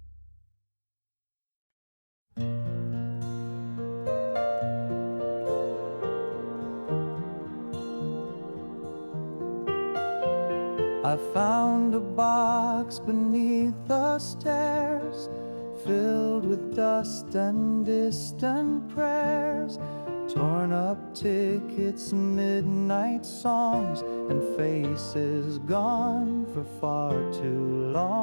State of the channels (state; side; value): inverted; both; correlation -1.00